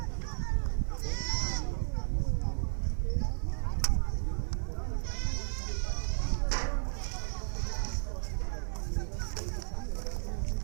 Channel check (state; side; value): silent; left; digital silence